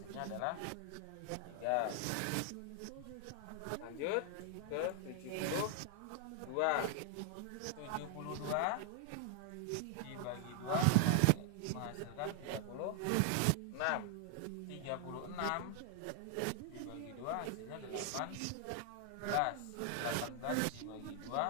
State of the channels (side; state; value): both; different; correlation 0.00